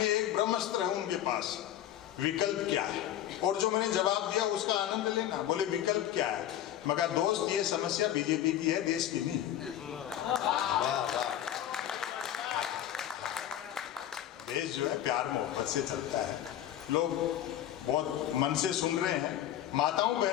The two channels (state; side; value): quieter; right; 11.7 dB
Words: एक ब्रह्मास्त्र है उनके पास, विकल्प क्या है। और जो मैंने जवाब दिया उसका आनंद लेना। बोले विकल्प क्या है? मैं कहा दोस्त ये समस्या बीजेपी की है, देश की नहीं। देश जो है प्यार मोहब्बत से चलता है। लोग बहुत मन से सुन रहे हैं। माताओं